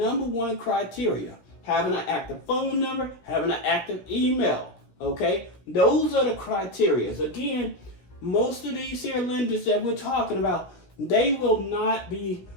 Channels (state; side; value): late; right; 16 ms